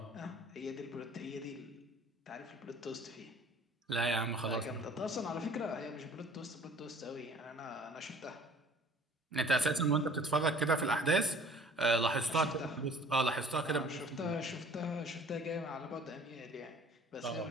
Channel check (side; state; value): both; normal; correlation 0.51